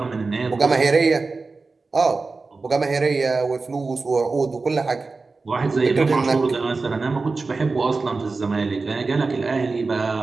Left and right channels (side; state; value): left; quieter; 3.9 dB